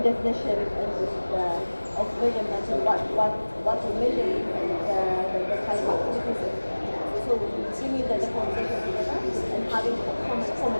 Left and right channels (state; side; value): inverted; both; correlation -1.00